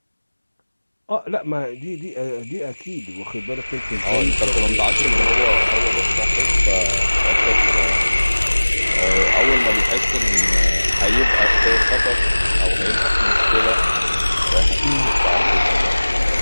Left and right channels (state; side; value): inverted; both; correlation -1.00